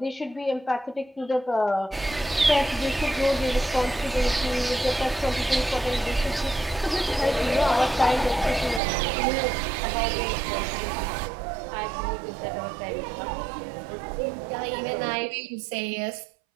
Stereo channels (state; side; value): drops out; left; at 8.8 s